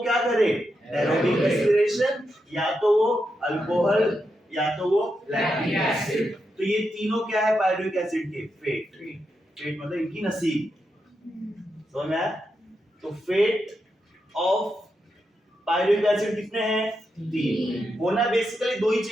क्या करे, एरोबिक रेस्पिरेशन, या तो वो अल्कोहल, या तो वो लैक्टिक एसिड। तो ये तीनों क्या है पायरुविक एसिड के, फेट। फेट मतलब इनकी नसीब, समझ में आया। तो फेट ऑफ पायरुविक एसिड कितने हैं, 3। होना बेसिकली 2 ही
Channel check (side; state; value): both; normal; correlation 0.85